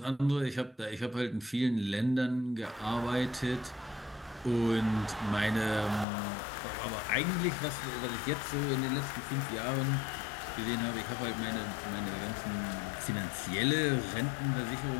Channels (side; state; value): right; drops out; at 6.1 s